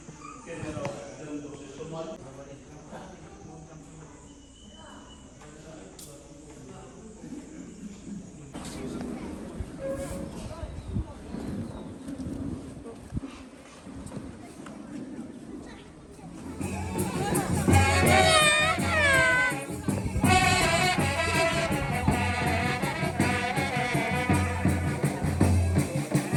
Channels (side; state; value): both; identical; correlation 1.00